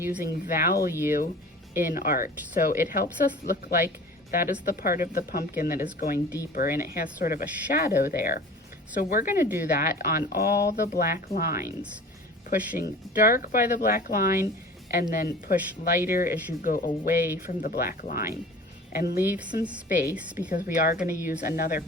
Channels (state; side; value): normal; both; correlation 0.41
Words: value in art. So it helps us look like that is the part of the pumpkin that is going deeper, and it has sort of a shadow there. So we're gonna do that on all the black lines, pushing dark by the black line and then push lighter as you go away from the black line. And leave some space because we are gonna use another